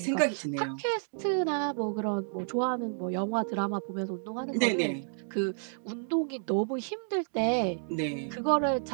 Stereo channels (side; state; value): left; silent; digital silence